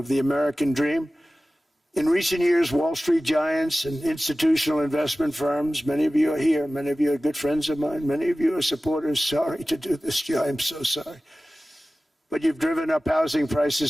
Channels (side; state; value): both; normal; correlation 0.96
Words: the American dream. In recent years, Wall Street giants and institutional investment firms, many of you are here, many of you are good friends of mine, many of you are supporters. Sorry to do this to you, I'm so sorry. But you've driven up housing